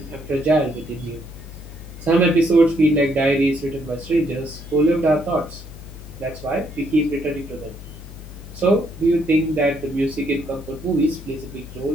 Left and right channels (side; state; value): left; noise; hum, 14 dB below the sound